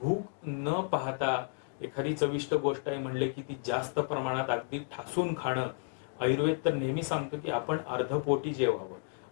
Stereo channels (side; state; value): right; silent; 56 dB below the other